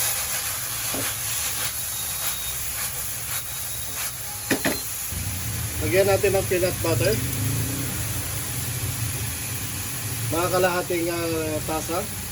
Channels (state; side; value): identical; both; correlation 1.00